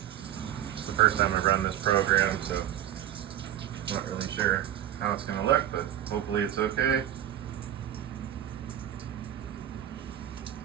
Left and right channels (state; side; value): quieter; left; 11.5 dB